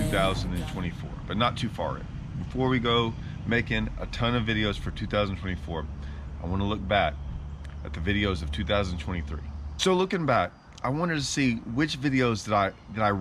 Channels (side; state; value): both; identical; correlation 1.00